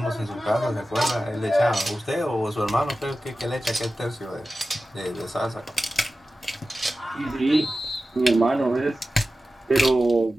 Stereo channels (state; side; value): normal; both; correlation 0.94